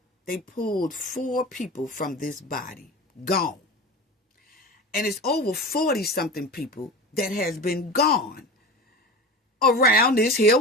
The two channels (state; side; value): normal; both; correlation 0.31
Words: they pulled 4 people from this body, gone. And it's over 40-something people that has been gone around this here